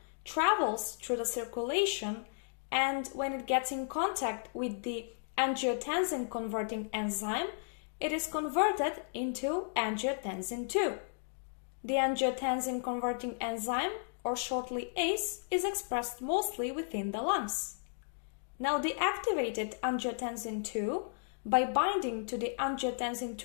travels through the circulation, and when it gets in contact with the angiotensin converting enzyme, it is converted into angiotensin 2. The angiotensin converting enzyme, or shortly ACE, is expressed mostly within the lungs. Now the activated angiotensin 2, by binding to the angiotensin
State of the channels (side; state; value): right; silent; digital silence